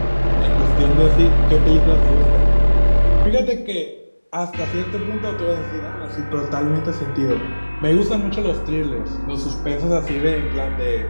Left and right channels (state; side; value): inverted; both; correlation -1.00